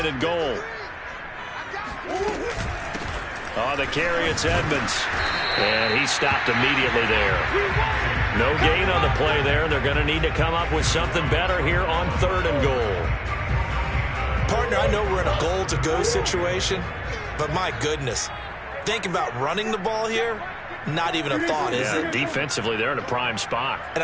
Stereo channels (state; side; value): identical; both; correlation 1.00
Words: and goal. On the carry, it's Edmonds. And he stopped immediately there. No gain on the play there. They're going to need to come up with something better here on 3rd and goal. Partner, I know we're in a goal-to-go situation, but my goodness. Think about running the ball here, not even a thought, is it? Defensively, they're in a prime spot. And